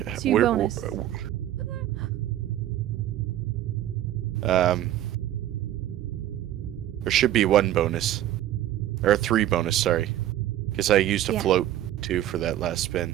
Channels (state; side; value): quieter; left; 12.8 dB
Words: get 2 bonus. There should be 1 bonus. Or 3 bonus, sorry. Because I used a Yeah. float, too, for that last spin.